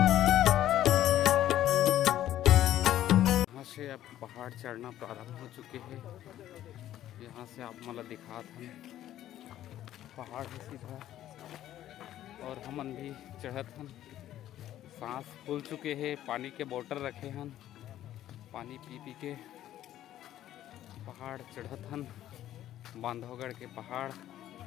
यहाँ से अब पहाड़ चढ़ना प्रारंभ हो चुके हैं। यहाँ से आप मन ला दिखात हन पहाड़ है सीधा और हमन भी चढ़त हन। सांस फूल चुके हैं, पानी के बोतल रखे हन, पानी पी पी के पहाड़ चढ़त हन, बांधवगढ़ के पहाड़।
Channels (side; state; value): right; quieter; 12.6 dB